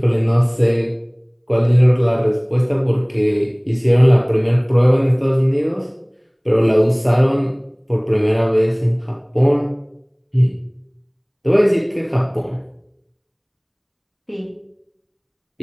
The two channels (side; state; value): both; identical; correlation 1.00